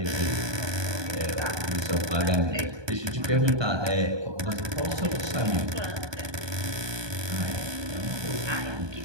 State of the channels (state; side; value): late; left; 1.2 ms